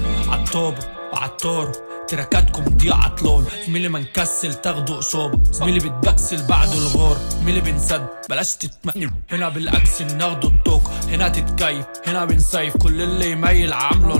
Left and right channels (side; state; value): both; inverted; correlation -1.00